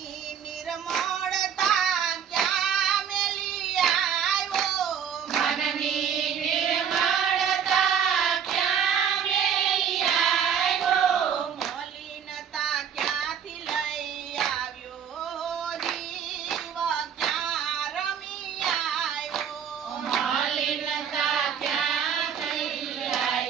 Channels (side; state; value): left; quieter; 8.0 dB